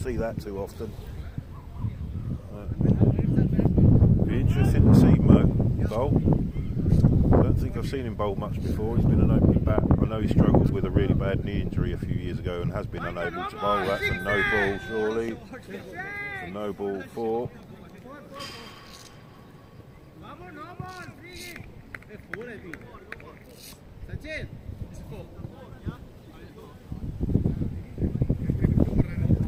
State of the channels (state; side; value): identical; both; correlation 1.00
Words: that too often. Be interesting to see Mo bowl. I don't think I've seen him bowl much before. He's been an opening bat. I know he struggled with a really bad knee injury a few years ago and has been unable to bowl. That's a no ball, surely. It's a no ball 4.